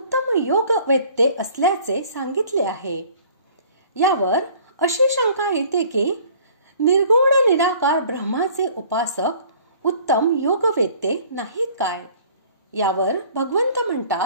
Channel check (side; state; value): both; inverted; correlation -0.52